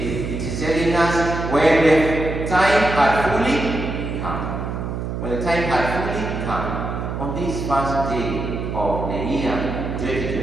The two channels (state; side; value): noise; right; hum, 4 dB below the sound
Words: it is telling us when the time had fully come. When the time had fully come, on this first day of the year